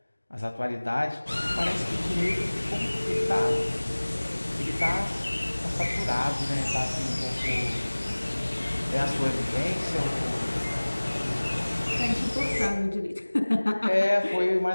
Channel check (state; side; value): inverted; both; correlation -1.00